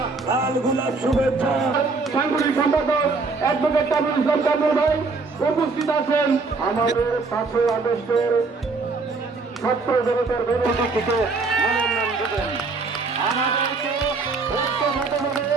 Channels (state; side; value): quieter; left; 4.0 dB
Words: লাল গোলাপ শুভেচ্ছা। সাংগঠনিক সম্পাদক অ্যাডভোকেট তাবুল ইসলাম তাবুল ভাই উপস্থিত আছেন। আমাদের 5 আগস্টের ছাত্র জনতার বিরোধী থেকে মনোনয়ন দেবেন। আমাদেরকে ঐক্যবদ্ধভাবে